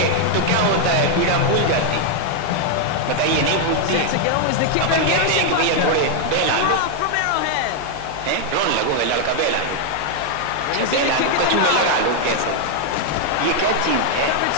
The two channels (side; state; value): both; different; correlation 0.00